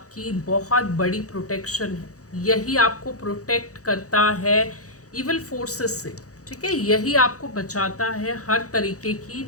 बहुत बड़ी प्रोटेक्शन है। यही आपको प्रोटेक्ट करता है इविल फोर्सेस से। ठीक है, यही आपको बचाता है हर तरीके की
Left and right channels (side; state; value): right; late; 0.66 ms